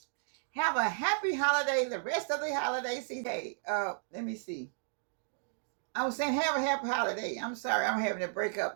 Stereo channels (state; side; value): silent; left; digital silence